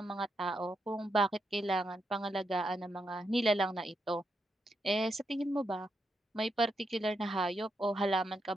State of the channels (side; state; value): both; normal; correlation 0.83